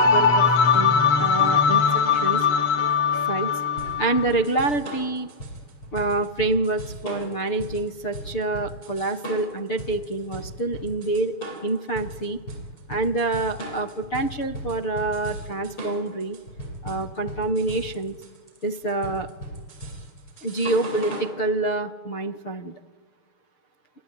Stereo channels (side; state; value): right; late; 6.8 ms